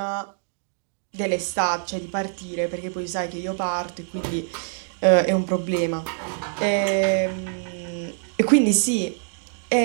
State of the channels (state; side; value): silent; left; digital silence